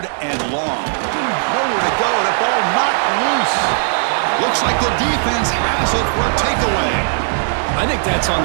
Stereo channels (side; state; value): left; silent; digital silence